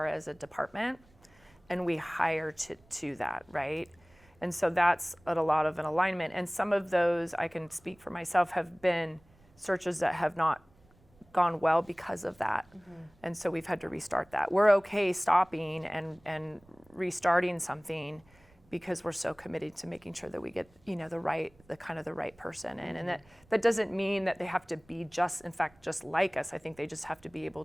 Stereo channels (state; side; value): noise; right; rumble, 29 dB below the sound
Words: as a department, and we hire to that, right? And so that's a lot of an alignment. And some of those, I can speak for myself, have been searches that have not gone well because of that. And so we've had to restart that. We're okay stopping and restarting something because we're so committed to making sure that we get, the right person in. And that doesn't mean that they have to be just like us. I think they just have to be able